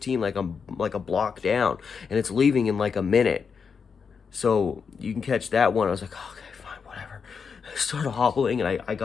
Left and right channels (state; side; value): quieter; right; 6.0 dB